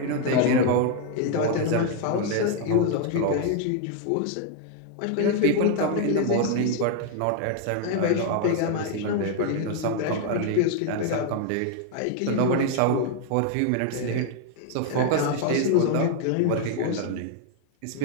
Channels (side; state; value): both; different; correlation 0.00